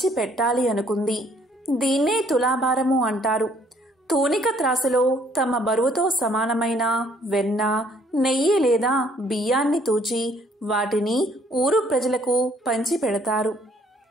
పెట్టాలి అనుకుంది. దీన్నే తులాభారము అంటారు. తూనిక త్రాసులో తమ బరువుతో సమానమైన వెన్న, నెయ్యి లేదా బియ్యాన్ని తూచి వాటిని ఊరు ప్రజలకు పంచి పెడతారు.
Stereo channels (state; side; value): normal; both; correlation 0.63